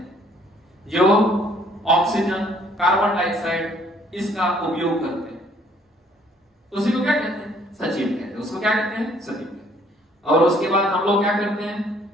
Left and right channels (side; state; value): both; normal; correlation 0.62